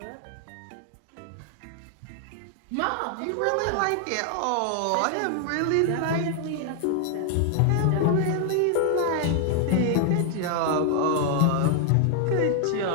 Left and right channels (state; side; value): different; both; correlation 0.00